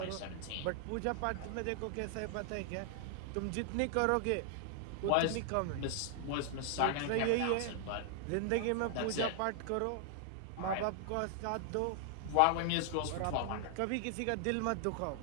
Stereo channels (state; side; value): different; both; correlation 0.00